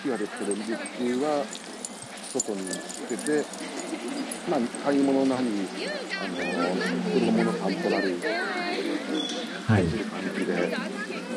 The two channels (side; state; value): both; identical; correlation 1.00